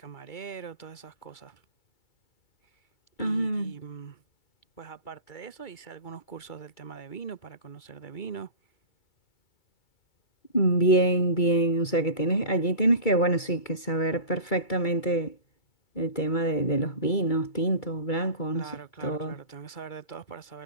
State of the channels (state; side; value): late; right; 2.3 ms